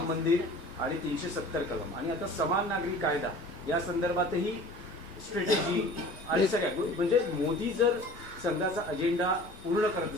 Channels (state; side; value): normal; both; correlation 0.44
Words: मंदिर आणि 370 कलम, आणि आता समान नागरी कायदा या संदर्भातही स्ट्रॅटेजी आणि सगळ्या म्हणजे मोदी जर संघाचा अजेंडा पूर्ण करत